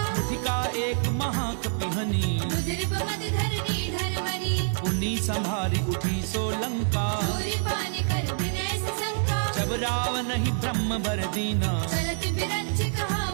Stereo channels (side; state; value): left; silent; 60 dB below the other